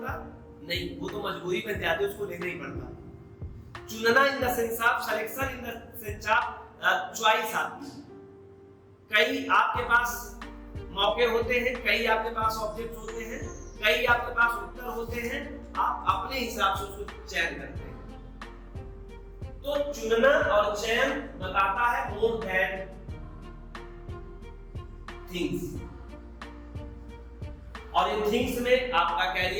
नहीं, वो तो मजबूरी बन जाती है, उसको लेना ही पड़ता। चुनना in the sense of selection in the sense of choice आती है। कई आपके पास मौके होते हैं, कई आपके पास ऑब्जेक्ट होते हैं, कई आपके पास उत्तर होते हैं, आप अपने हिसाब से उसको चयन करते हैं। तो चुनना और चयन बताता है मोर देन थिंग्स। और इन थिंग्स में आपका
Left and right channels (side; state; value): both; identical; correlation 1.00